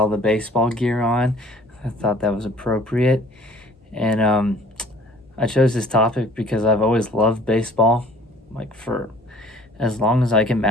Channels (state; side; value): normal; both; correlation 0.53